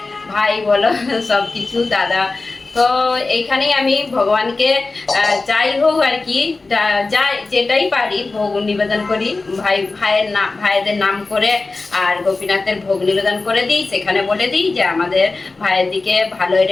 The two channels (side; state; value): right; quieter; 3.6 dB